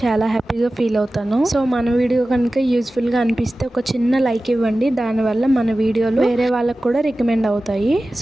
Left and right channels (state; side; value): normal; both; correlation 0.96